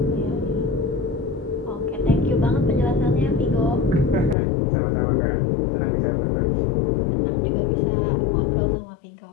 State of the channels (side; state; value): right; drops out; at 4.4 s